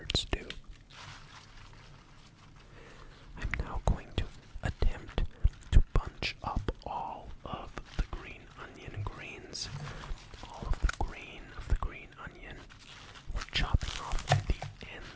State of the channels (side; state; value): both; identical; correlation 1.00